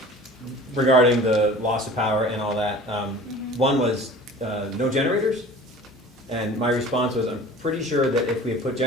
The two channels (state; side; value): normal; both; correlation 0.43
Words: regarding the loss of power and all that. One was no generators, and my response was, I'm pretty sure that if we had put